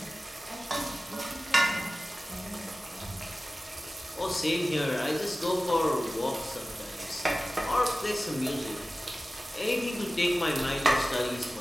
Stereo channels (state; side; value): normal; both; correlation 0.96